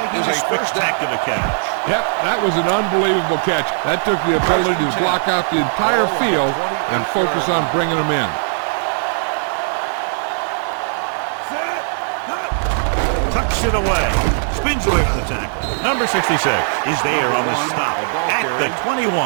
a spectacular catch. Yep, that was an unbelievable catch. That took the ability to block out the entire field and focus on bringing them in. Tucks it away. Spins away from the tackle. Number 66 is there on the stop at the 21.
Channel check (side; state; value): left; silent; digital silence